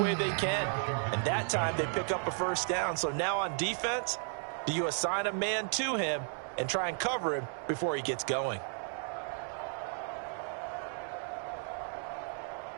they can. And that time they pick up a first down. So now on defense, do you assign a man to him and try and cover him before he gets going?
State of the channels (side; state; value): left; silent; 55 dB below the other